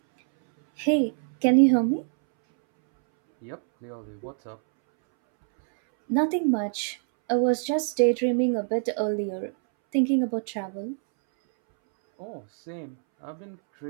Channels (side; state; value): left; silent; 61 dB below the other